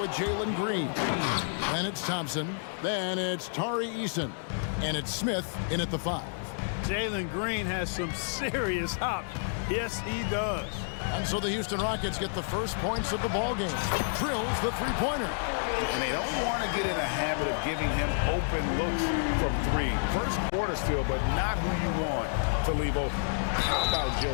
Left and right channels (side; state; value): right; silent; digital silence